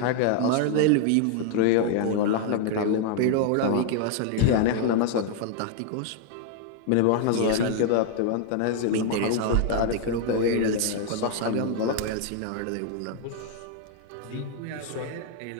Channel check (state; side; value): different; both; correlation 0.00